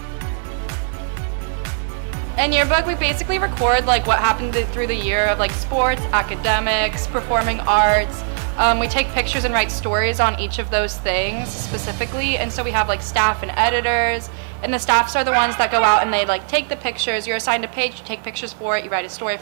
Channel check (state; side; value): silent; left; 66 dB below the other